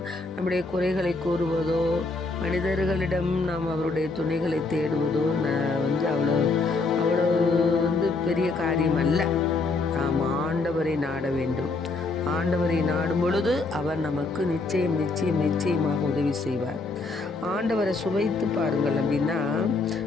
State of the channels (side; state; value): right; quieter; 3.7 dB